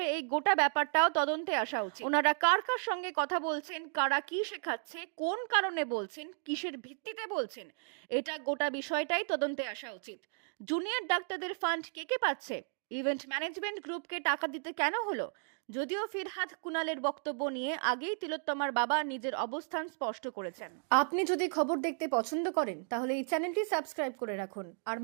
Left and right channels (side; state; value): left; silent; 55 dB below the other